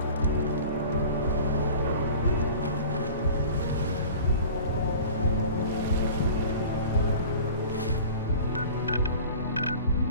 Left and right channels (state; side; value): inverted; both; correlation -0.41